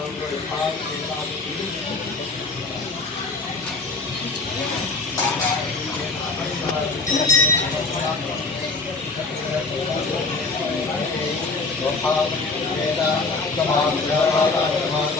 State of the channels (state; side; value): quieter; right; 3.7 dB